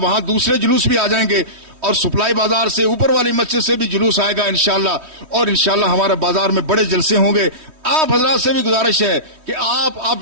وہاں دوسرے جلوس بھی آ جائیں گے، اور سپلائی بازار سے اوپر والی مسجد سے بھی جلوس آئے گا انشاءاللہ، اور انشاءاللہ ہمارے بازار میں بڑے جلسے ہوں گے۔ آپ حضرات سے بھی گزارش ہے کہ آپ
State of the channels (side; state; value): left; late; 3.1 ms